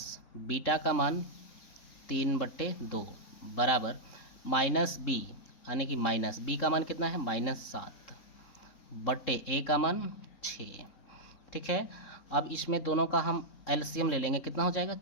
बीटा का मान 3/2 बराबर -b, यानी कि माइनस b का मान कितना है, -7 बटे a का मान 6, ठीक है। अब इसमें दोनों का हम एलसीएम ले लेंगे, कितना हो जाएगा,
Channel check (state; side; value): late; right; 3.7 ms